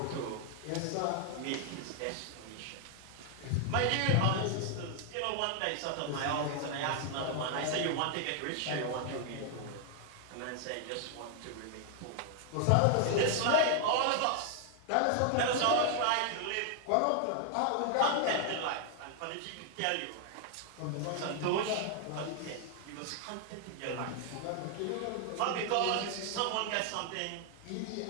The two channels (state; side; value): different; both; correlation 0.00